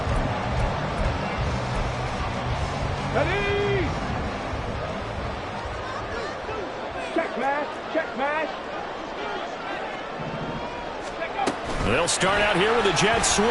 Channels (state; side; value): identical; both; correlation 1.00